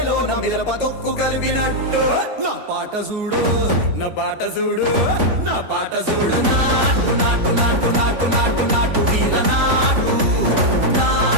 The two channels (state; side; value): late; left; 3.5 ms